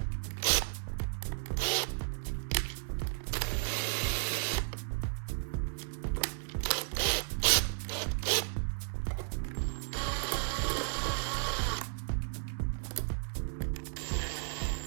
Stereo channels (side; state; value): left; silent; digital silence